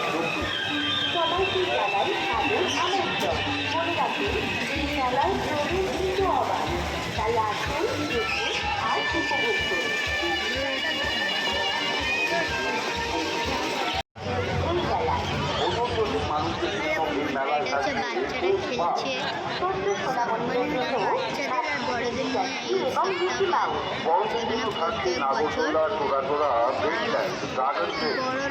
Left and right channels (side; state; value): both; identical; correlation 1.00